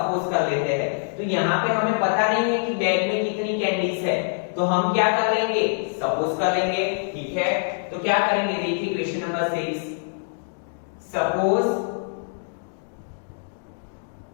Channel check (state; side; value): silent; right; digital silence